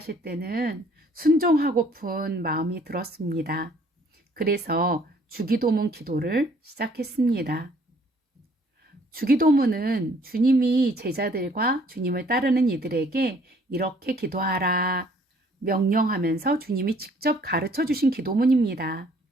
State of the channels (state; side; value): normal; both; correlation 0.60